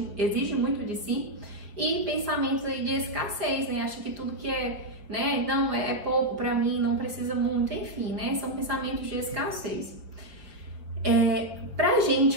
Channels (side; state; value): left; late; 5.1 ms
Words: exige muito de si, e pensamentos aí de escassez, acha que tudo que não é pouco para mim, não precisa muito, enfim, são pensamentos de escassez. Para a